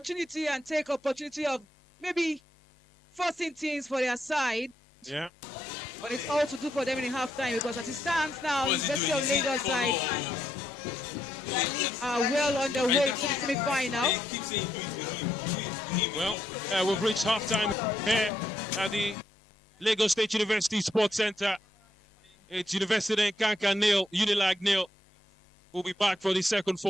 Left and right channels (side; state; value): both; normal; correlation 0.78